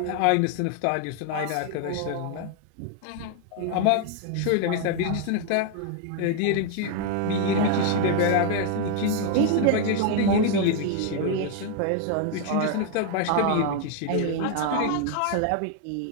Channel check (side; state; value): both; different; correlation 0.00